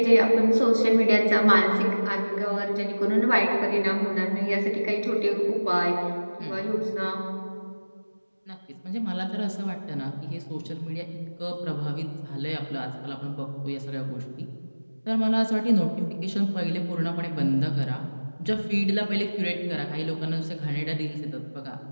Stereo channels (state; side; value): inverted; both; correlation -1.00